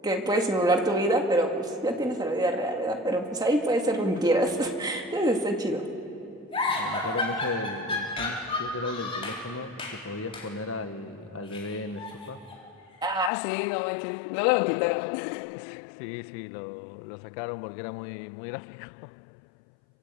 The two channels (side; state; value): right; drops out; at 13.3 s